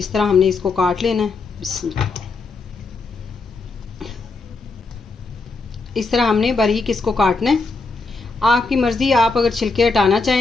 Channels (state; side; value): quieter; right; 3.9 dB